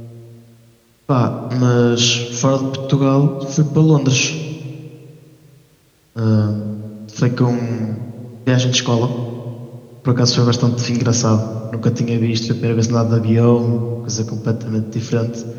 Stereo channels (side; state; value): both; identical; correlation 1.00